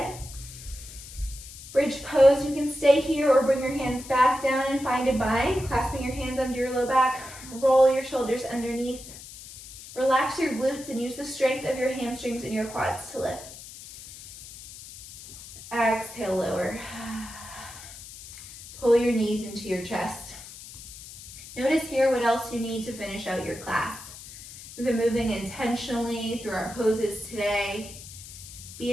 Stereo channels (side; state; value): left; noise; hiss, 15 dB below the sound